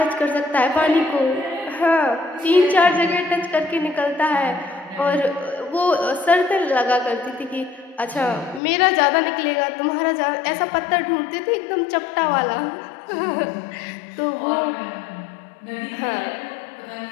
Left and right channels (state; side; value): drops out; right; at 8.6 s